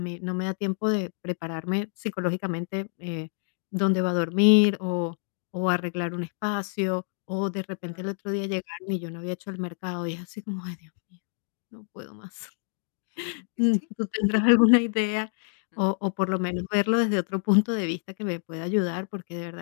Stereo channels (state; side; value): silent; right; 55 dB below the other